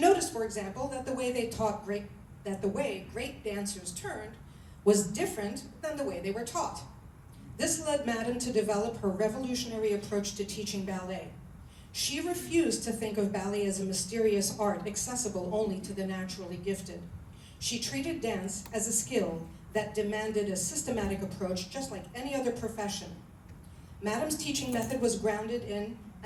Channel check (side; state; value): both; identical; correlation 1.00